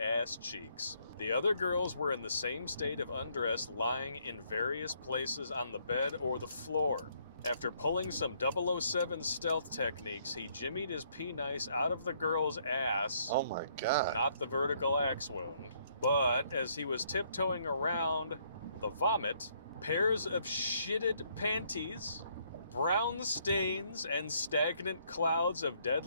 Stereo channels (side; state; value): both; inverted; correlation -0.69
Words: cheeks. The other girls were in the same state of undress, lying in various places on the bed or the floor. After pulling some 007 stealth techniques, he jimmied his penice out of the girl's ass. Oh my God. Not the vertical axe wound. But as he was tiptoeing around the vomit, pairs of shitted panties, brown stains, and stagnant clouds of